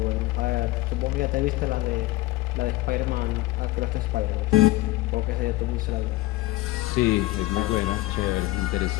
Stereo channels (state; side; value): quieter; right; 18.4 dB